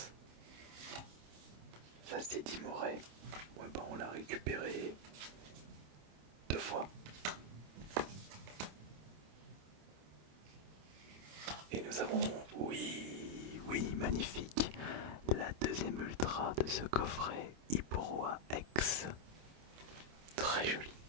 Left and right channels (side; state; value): left; late; 27 ms